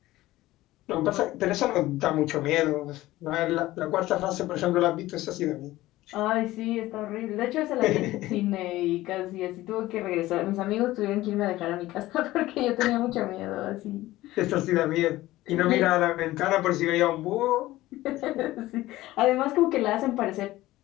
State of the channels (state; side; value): quieter; right; 16.9 dB